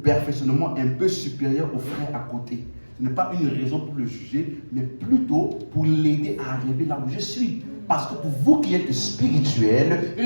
un peu supérieur au frère à côté, ce n'est pas une raison pour le juger, mais plutôt pour l'aider à arriver là où je suis. Parce que pour vous qui êtes spirituels,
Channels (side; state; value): both; inverted; correlation -1.00